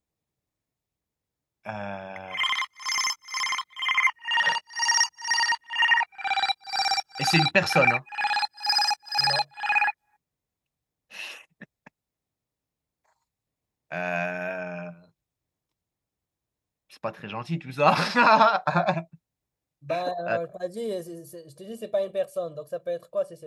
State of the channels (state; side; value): identical; both; correlation 1.00